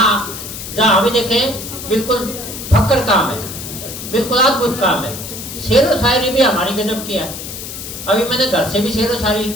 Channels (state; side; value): noise; left; hiss, 9 dB below the sound